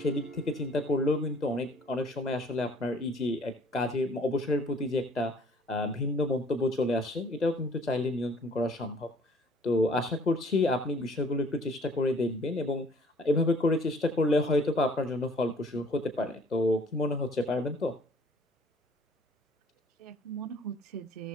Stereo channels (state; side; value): normal; both; correlation 0.56